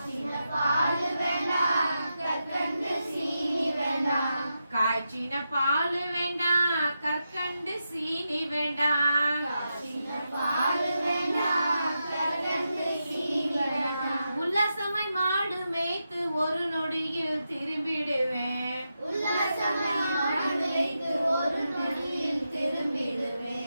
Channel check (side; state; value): both; inverted; correlation -0.87